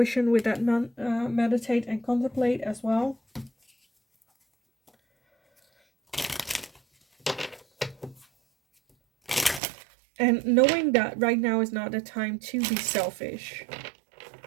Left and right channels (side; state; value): left; drops out; at 9.6 s